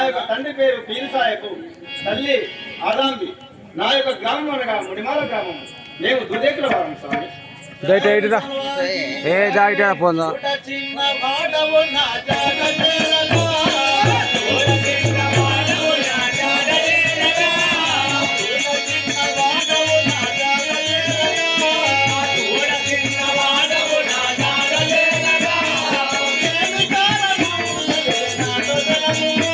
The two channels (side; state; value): both; identical; correlation 1.00